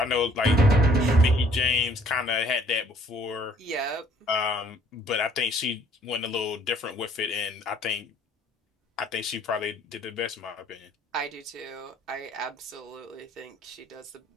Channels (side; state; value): both; normal; correlation 0.59